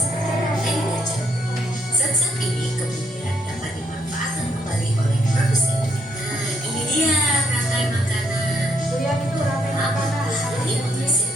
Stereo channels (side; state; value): both; normal; correlation 0.73